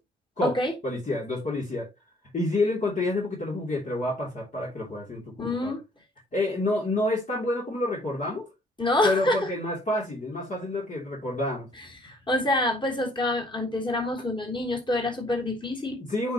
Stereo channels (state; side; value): normal; both; correlation 0.61